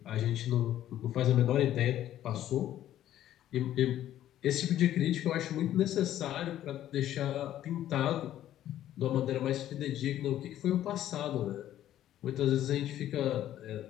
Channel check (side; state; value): right; quieter; 12.3 dB